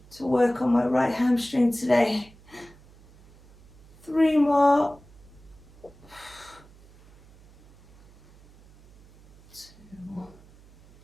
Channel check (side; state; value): right; noise; hum, 25 dB below the sound